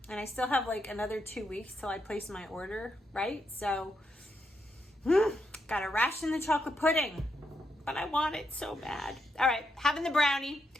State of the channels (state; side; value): normal; both; correlation 0.81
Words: I still have like another 2 weeks till I place my order, right? So, gotta ration the chocolate pudding. But I want it so bad. All right, having the brownie.